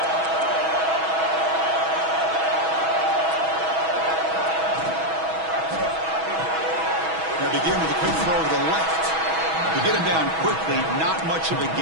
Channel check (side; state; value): left; late; 6.2 ms